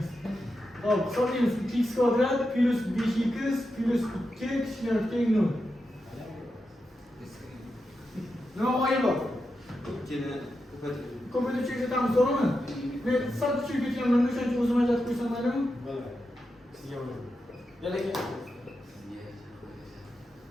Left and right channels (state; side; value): normal; both; correlation 0.88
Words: Hop, hisoblaymiz. 2x kvadrat plus 5x plus 2 kichkina teng 0. Nima g'oya bor? Ikkini ko'paytirib. Ko'paytirib ko'rsatamiz, to'g'rimi? Men sal tushib ketganman, o'shaning uchun o'zim ajratib qo'ysam maylimi? Bo'ladi. Sizga bo'ladi. Yana